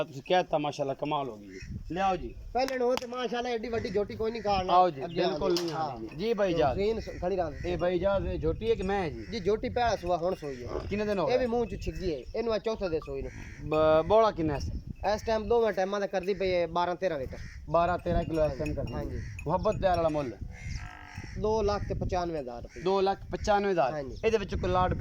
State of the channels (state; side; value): identical; both; correlation 1.00